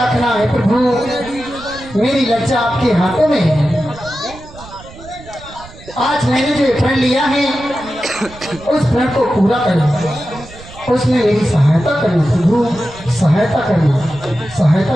है प्रभु। मेरी लज्जा आपके हाथों में है। आज मैंने जो प्रण लिया है उस प्रण को पूरा करना, उसमें मेरी सहायता करना प्रभु, सहायता करना, सहायता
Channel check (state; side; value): noise; right; rumble, 18 dB below the sound